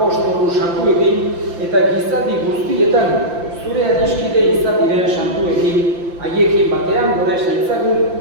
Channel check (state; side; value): late; left; 5.8 ms